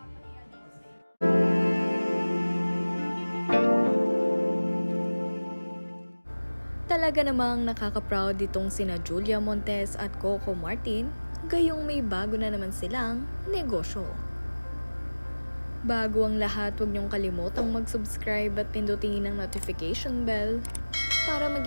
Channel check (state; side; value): inverted; both; correlation -1.00